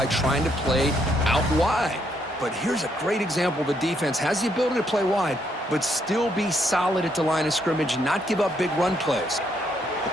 trying to play out wide. But here's a great example of a defense has the ability to play wide, but still be solid at the line of scrimmage and not give up big run plays. The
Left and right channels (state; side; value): normal; both; correlation 0.74